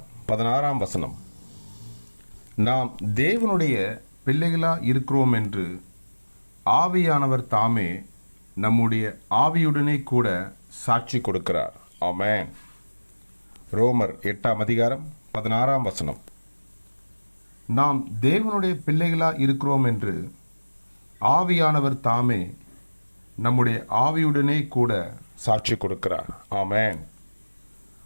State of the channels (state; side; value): inverted; both; correlation -1.00